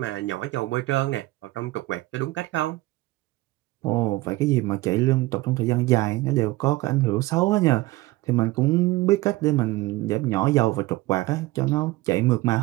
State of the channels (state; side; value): quieter; left; 19.3 dB